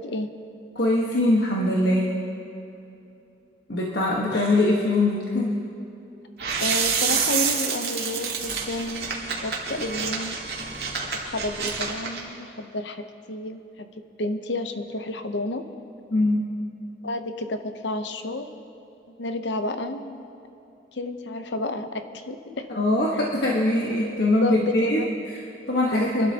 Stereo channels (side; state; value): both; normal; correlation 0.43